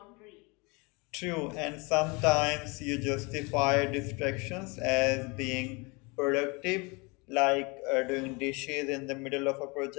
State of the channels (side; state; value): right; quieter; 28.2 dB